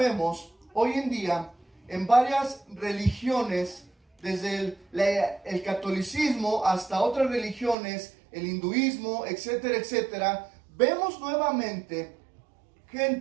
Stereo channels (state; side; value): drops out; left; at 7.8 s